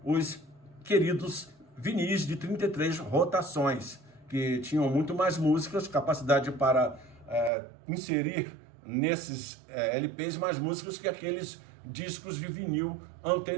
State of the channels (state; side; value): drops out; left; at 7.5 s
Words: os queridos vinis de 33 rotações, que tinham muito mais músicas, capacidade para inserir nesses LPs mais músicas que aqueles discos de vinil